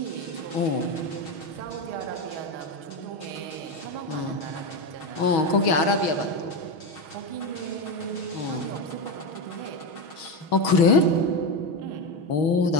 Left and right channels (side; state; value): right; late; 6.3 ms